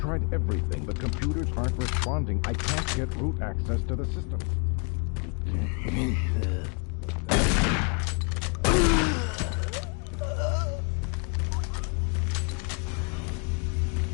everything. The computers aren't responding. I can't get root access to the systems.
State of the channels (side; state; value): right; quieter; 36.5 dB